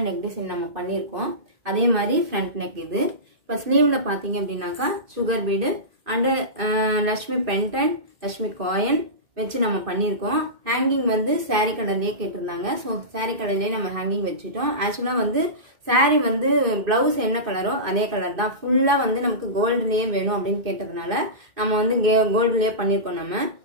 நெக் டிசைன் நம்ம பண்ணியிருக்கோம். அதே மாதிரி ஃப்ரண்ட் நெக் இது. இப்போ ஸ்லீவில் பார்த்தீங்க அப்படின்னாக்கா sugar bead and Lakshmi pendant, Lakshmi coin வச்சு நம்ம பண்ணியிருக்கோம். ஹேங்கிங் வந்து சாரீ கலர்லேயே கேட்டிருந்தாங்க. ஸோ சாரீ கலர்லேயே நம்ம ஹேங்கிங் வச்சுட்டோம். ஆக்சுவலாக வந்து சாரீ வந்து ப்ளவுஸ் என்ன கலரோ அதே கலர் தான். ஃபுல்லாக வந்து நமக்கு கோல்டுலேயே வேணும் அப்படின்னு கேட்டதுனால நம்ம வந்து கோல்டுலேயே பண்ணியிருக்கோம் நம்ம.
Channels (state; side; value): late; left; 2.1 ms